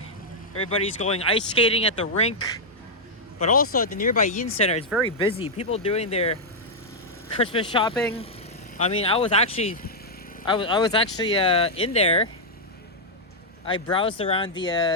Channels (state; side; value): normal; both; correlation -0.04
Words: Everybody's going ice skating at the rink, but also at the nearby Yin Center. It's very busy. People doing their Christmas shopping. I mean, I was actually in there. I browsed around